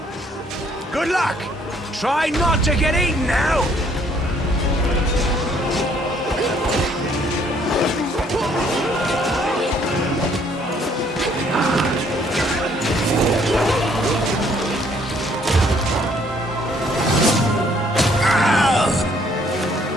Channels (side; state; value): both; normal; correlation 0.64